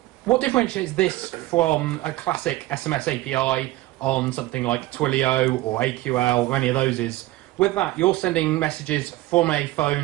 What differentiates this from a classic SMS API on something like Twilio or AQL or any of those is, with that, you're sending messages from a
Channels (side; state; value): left; quieter; 17.5 dB